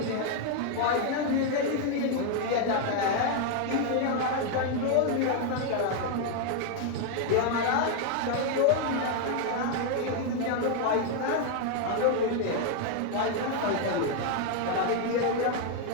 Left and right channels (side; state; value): both; different; correlation 0.00